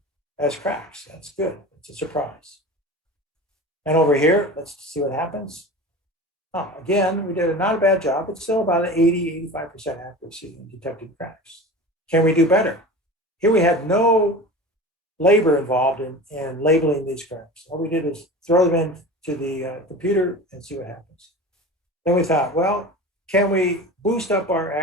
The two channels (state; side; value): normal; both; correlation 0.34